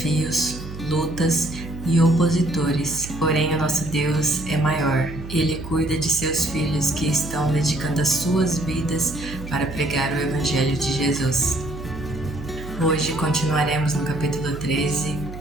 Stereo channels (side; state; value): right; noise; hum, 11 dB below the sound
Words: lutas e opositores, porém o nosso Deus é maior. Ele cuida de seus filhos que estão dedicando as suas vidas para pregar o Evangelho de Jesus. Hoje continuaremos no capítulo 13,